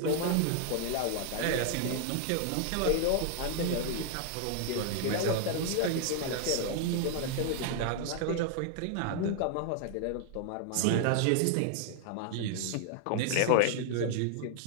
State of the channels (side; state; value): both; different; correlation 0.00